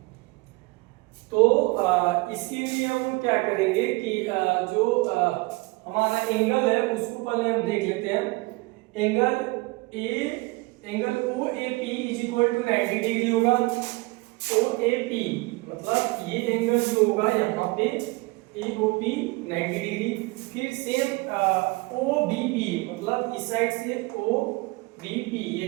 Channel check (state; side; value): quieter; left; 24.5 dB